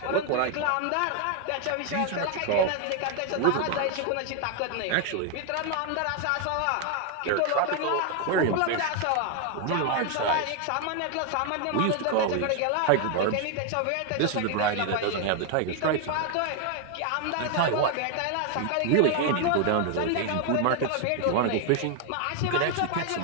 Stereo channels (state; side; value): different; both; correlation 0.01